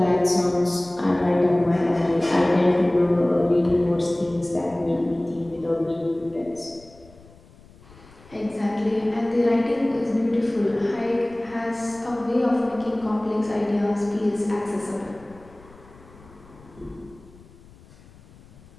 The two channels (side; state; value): left; noise; rumble, 24 dB below the sound